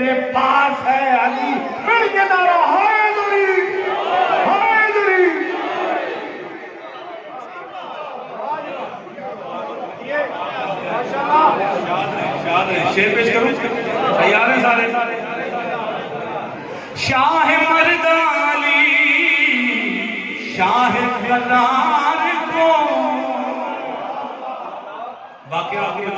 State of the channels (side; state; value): both; identical; correlation 1.00